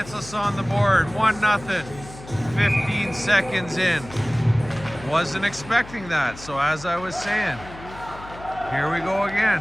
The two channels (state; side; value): noise; left; hum, 16 dB below the sound